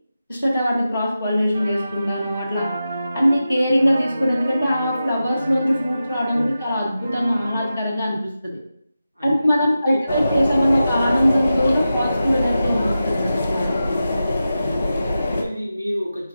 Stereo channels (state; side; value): inverted; both; correlation -0.92